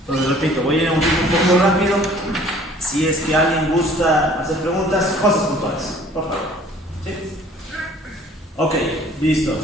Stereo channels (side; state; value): both; normal; correlation 0.53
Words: Entonces repito, voy a ir a un poco rápido. Si es que alguien gusta hacer preguntas, cosas puntuales, por favor. ¿Sí? Ok, listo.